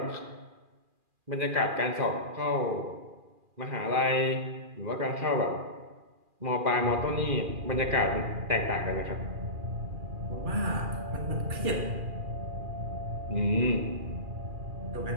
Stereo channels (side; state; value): left; late; 2.4 ms